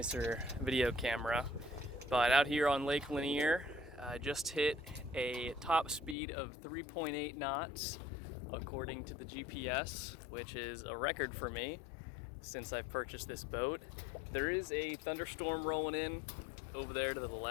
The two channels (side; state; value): right; drops out; at 6.2 s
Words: video camera. But out here on Lake Lanier, I just hit a top speed of 3.8 knots according to the GPS, which is a record for me since I've purchased this boat. There is a thunderstorm rolling in over there to the